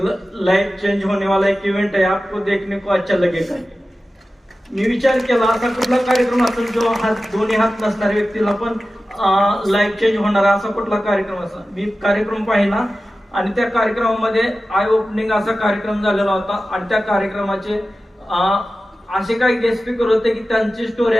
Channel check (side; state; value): both; normal; correlation 0.94